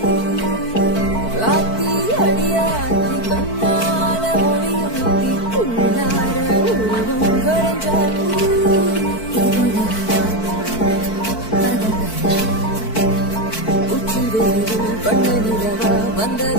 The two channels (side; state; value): right; late; 4.5 ms